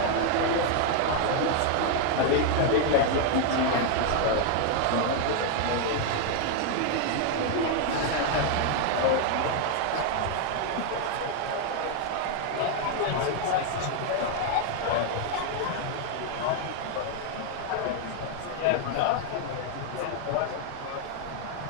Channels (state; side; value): different; both; correlation 0.00